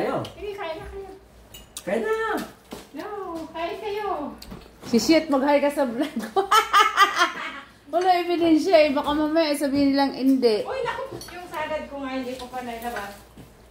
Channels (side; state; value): both; identical; correlation 1.00